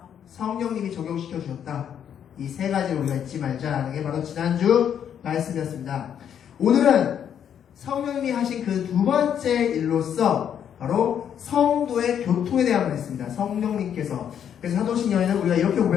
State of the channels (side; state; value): right; quieter; 8.9 dB